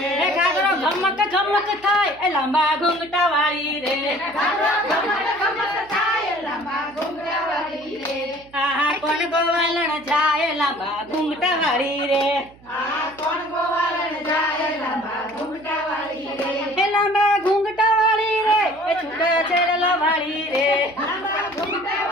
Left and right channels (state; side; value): noise; right; hum, 26 dB below the sound